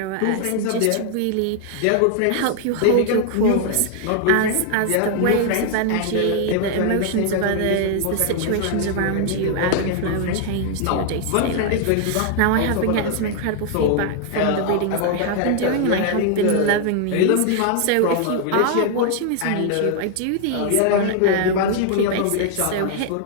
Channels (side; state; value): both; different; correlation 0.00